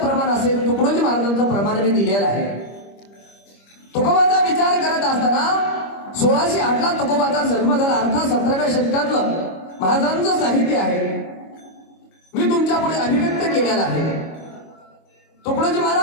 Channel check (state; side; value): late; right; 25 ms